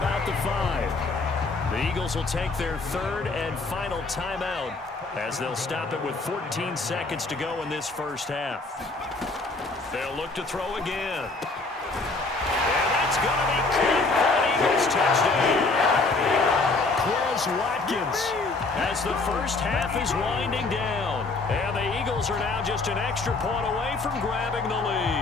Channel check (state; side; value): quieter; right; 3.6 dB